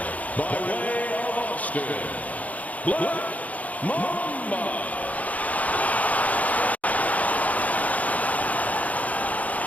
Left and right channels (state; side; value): late; right; 0.072 ms